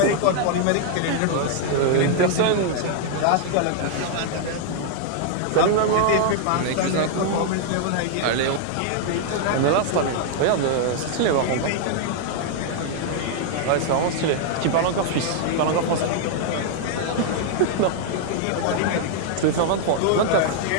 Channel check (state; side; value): different; both; correlation 0.00